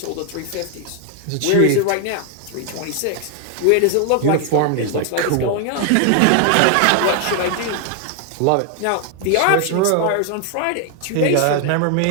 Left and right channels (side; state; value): both; different; correlation 0.00